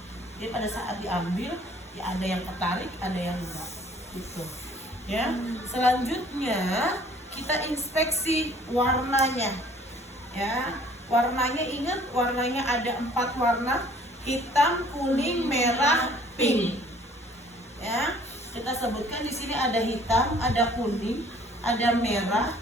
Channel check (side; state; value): both; normal; correlation 0.55